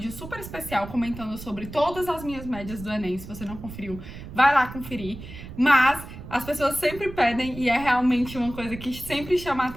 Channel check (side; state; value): right; noise; rumble, 13 dB below the sound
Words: super especial comentando sobre todas as minhas médias do Enem. Se você não conferiu, vai lá conferir. Mas as pessoas sempre pedem, e é realmente uma coisa que sempre chama a